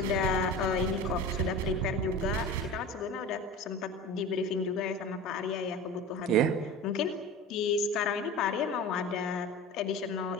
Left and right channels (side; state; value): both; normal; correlation 0.33